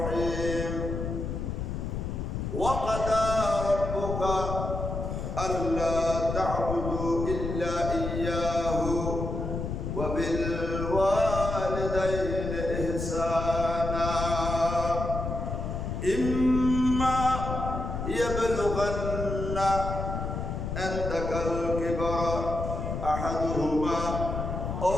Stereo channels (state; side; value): noise; left; rumble, 4 dB below the sound